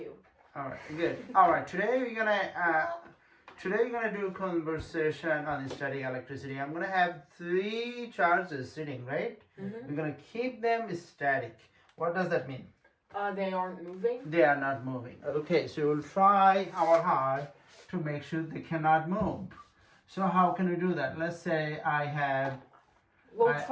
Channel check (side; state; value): both; identical; correlation 1.00